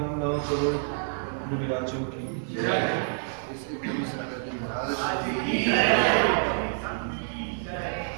9 करोड़ मुनिराजों की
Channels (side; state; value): left; silent; 59 dB below the other